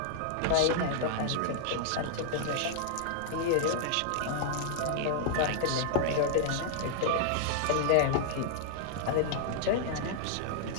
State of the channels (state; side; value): different; both; correlation -0.01